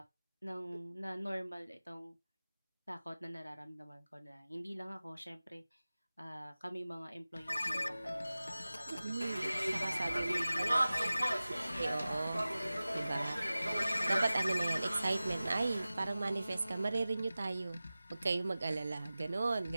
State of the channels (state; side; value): inverted; both; correlation -0.97